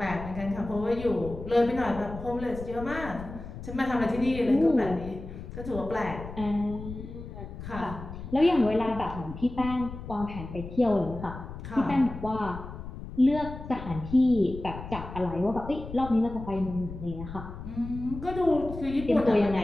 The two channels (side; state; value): left; noise; rumble, 11 dB below the sound